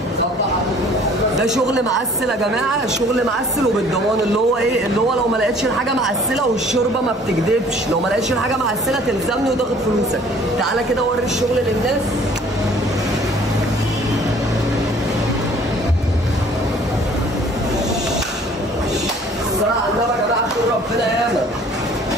ده شغل معسل يا جماعه، شغل معسل وبالضمان، اللي هو ايه؟ اللي هو لو ما لقيتش الحاجه معسله والشوربه ما بتكدبش، لو ما لقيتش الحاجه معسله تلزمني وتاخد فلوسك. تعالى كده وري الشغل للناس. الصلاه على النبي يا جماعه، خير ربنا ياما،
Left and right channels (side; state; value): both; normal; correlation 0.54